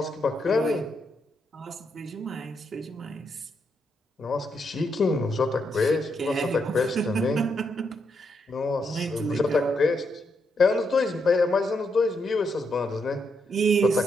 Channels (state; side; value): normal; both; correlation 0.80